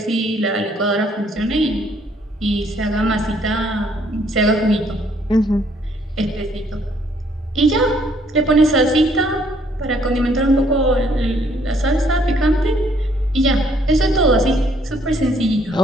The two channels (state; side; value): normal; both; correlation 0.65